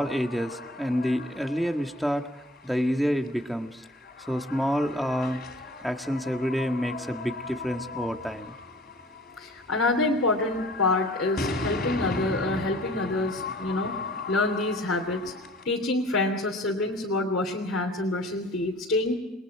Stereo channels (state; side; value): normal; both; correlation 0.48